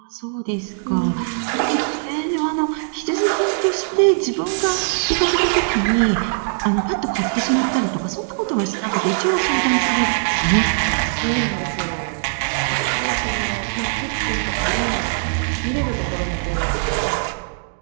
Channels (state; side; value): silent; left; digital silence